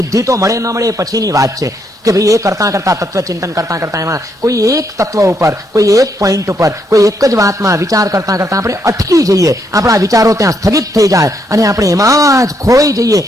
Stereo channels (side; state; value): both; normal; correlation 0.76